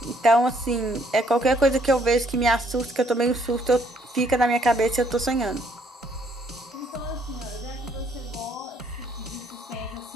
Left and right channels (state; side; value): normal; both; correlation 0.67